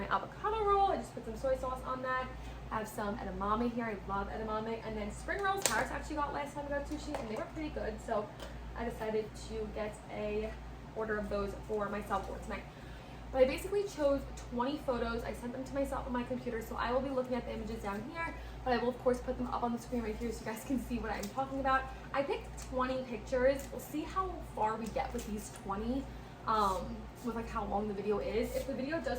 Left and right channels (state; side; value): identical; both; correlation 1.00